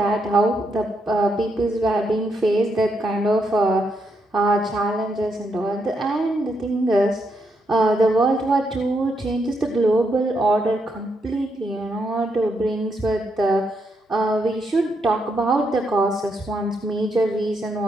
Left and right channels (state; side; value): normal; both; correlation 0.79